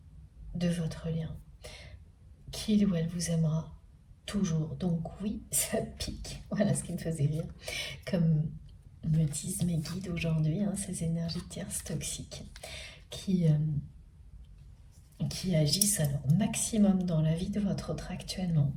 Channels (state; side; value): identical; both; correlation 1.00